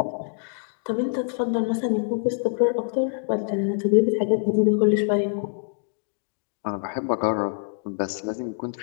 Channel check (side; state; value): right; silent; digital silence